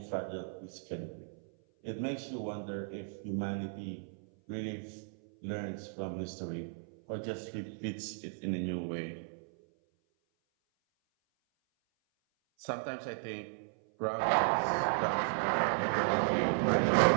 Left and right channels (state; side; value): silent; left; 54 dB below the other